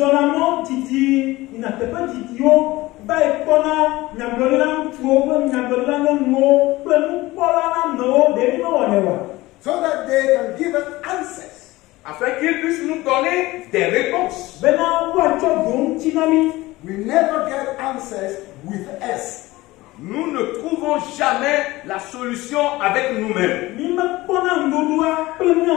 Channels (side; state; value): right; quieter; 19.2 dB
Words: So that they can give us answers. Afin qu'ils puissent nous donner des réponses. We never get answers with us. Nous ne trouvons jamais la solution avec nous-mêmes.